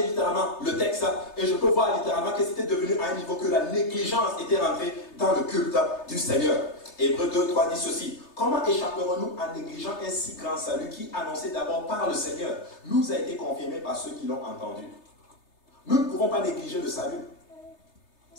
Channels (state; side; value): late; right; 3.3 ms